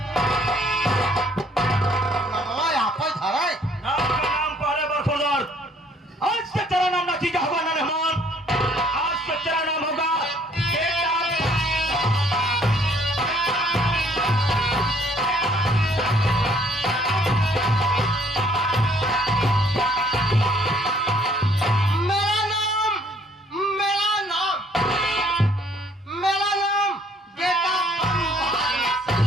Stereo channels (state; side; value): normal; both; correlation 0.62